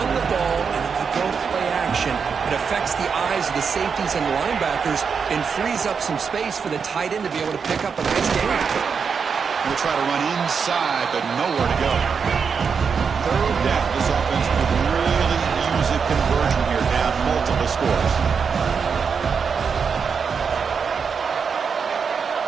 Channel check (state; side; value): quieter; left; 6.0 dB